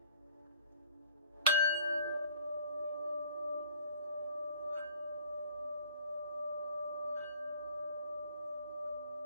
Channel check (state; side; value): inverted; both; correlation -0.52